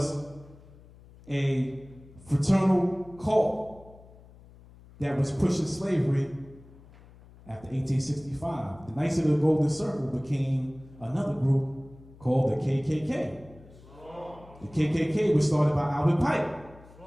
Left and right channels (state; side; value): noise; left; hum, 23 dB below the sound